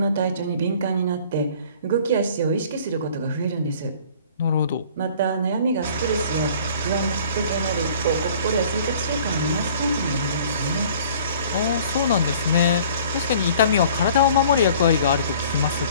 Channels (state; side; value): inverted; both; correlation -0.51